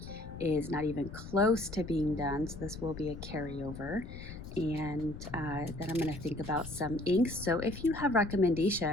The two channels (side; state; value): left; noise; rumble, 12 dB below the sound